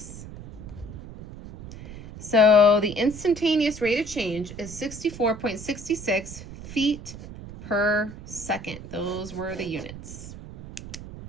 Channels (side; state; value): right; noise; rumble, 13 dB below the sound